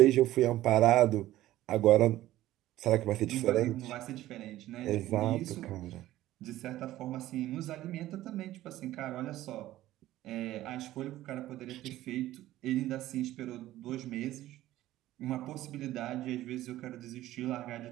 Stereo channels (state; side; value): quieter; left; 14.9 dB